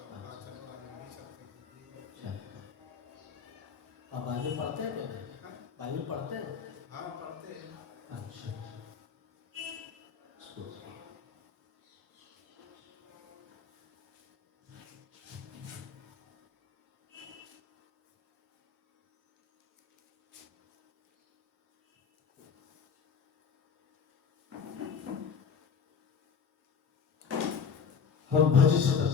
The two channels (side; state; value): right; quieter; 6.3 dB